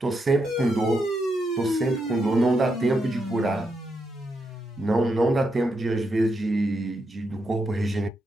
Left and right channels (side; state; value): both; normal; correlation 0.82